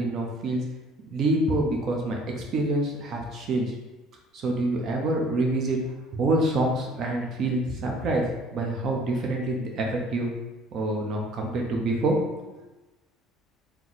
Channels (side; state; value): both; normal; correlation 0.55